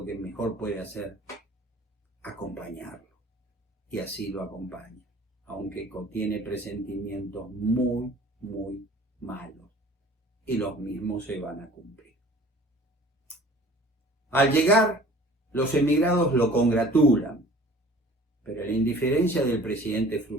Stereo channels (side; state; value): both; normal; correlation 0.48